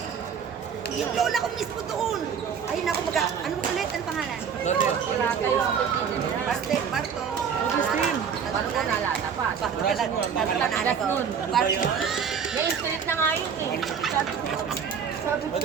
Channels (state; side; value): quieter; left; 7.1 dB